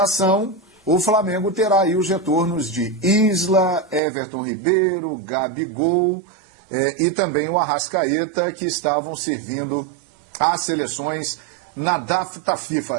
o Flamengo terá aí os retornos de Isla, Everton Ribeiro, Gabigol e também o Arrascaeta, que estavam servindo às seleções na data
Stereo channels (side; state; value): left; drops out; at 4.0 s